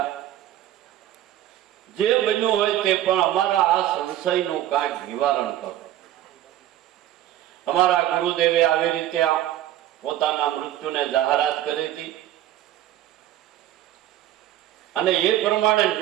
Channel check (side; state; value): left; quieter; 12.9 dB